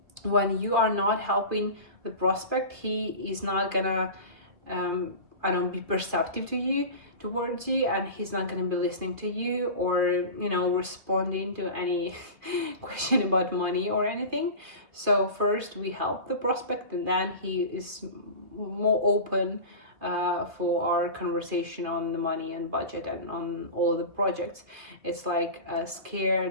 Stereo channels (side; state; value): left; late; 2.3 ms